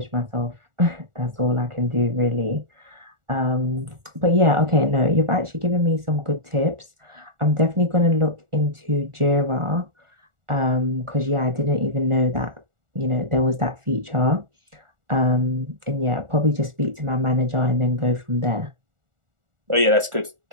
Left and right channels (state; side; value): late; left; 1.4 ms